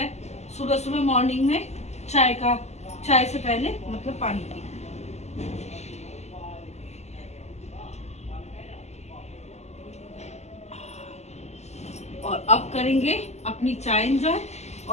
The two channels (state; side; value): late; right; 0.33 ms